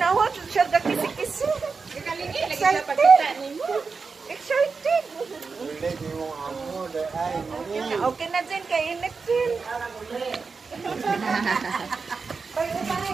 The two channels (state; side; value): quieter; left; 4.8 dB